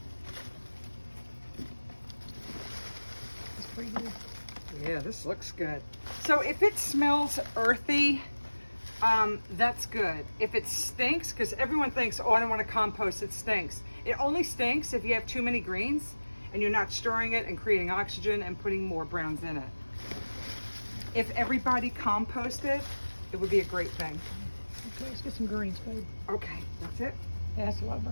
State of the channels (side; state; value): both; inverted; correlation -1.00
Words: It's pretty good. Yeah, this looks good. So if it smells earthy, that's good. If it stinks, because everyone thinks, oh, I don't want to compost, it stinks. It only stinks if you have too many greens and you're not storing it and creating oxygen and putting more browns in it. If everybody composted, it would be a great thing. Okay, let's get some greens, babe. Okay, that's it? Yeah, that's a lot of